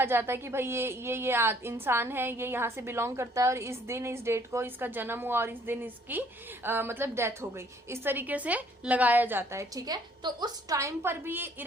जाता है कि भाई ये इंसान है, ये यहाँ से बिलोंग करता है और इस दिन इस डेट को इसका जन्म हुआ और इस दिन इसकी मतलब डेथ हो गई, इस तरीके से लगाया जाता है, ठीक है. तो उस टाइम पर भी ये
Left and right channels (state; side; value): normal; both; correlation 0.62